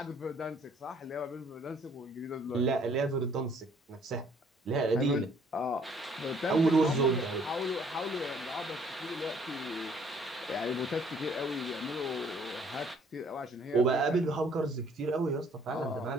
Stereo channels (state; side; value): normal; both; correlation 0.61